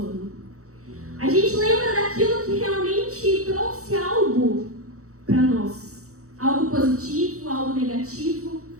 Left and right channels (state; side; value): late; left; 0.65 ms